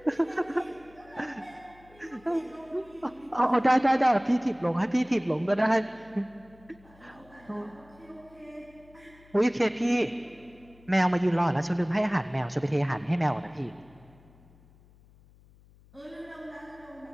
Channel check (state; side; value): noise; left; hum, 26 dB below the sound